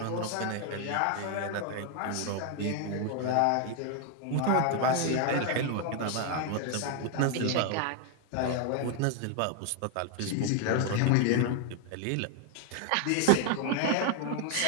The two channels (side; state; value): both; different; correlation 0.01